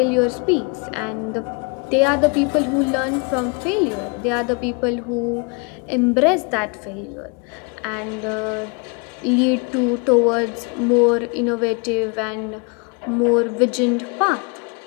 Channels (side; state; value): right; quieter; 33.4 dB